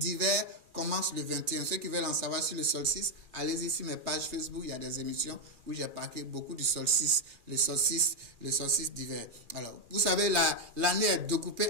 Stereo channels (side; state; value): left; late; 2.4 ms